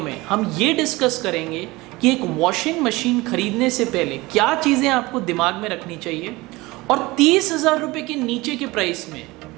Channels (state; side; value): quieter; left; 21.5 dB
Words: हम ये डिस्कस करेंगे कि एक वॉशिंग मशीन खरीदने से पहले क्या चीज़ें आपको दिमाग में रखनी चाहिए और 30,000 रुपये के नीचे के प्राइस में